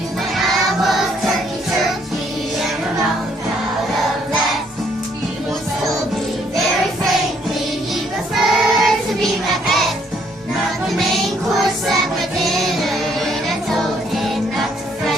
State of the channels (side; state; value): both; normal; correlation 0.67